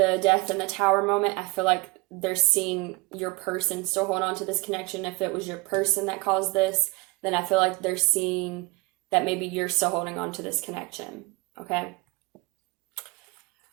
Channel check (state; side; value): quieter; left; 24.9 dB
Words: death and the Tower moment, I feel like they're seeing your person still hold on to this connection. If it was your person that caused this, then I feel like they're seeing that maybe you're still holding on to this connection, okay?